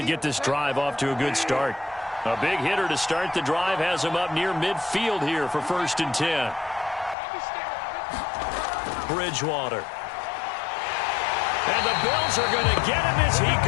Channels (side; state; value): right; drops out; at 7.2 s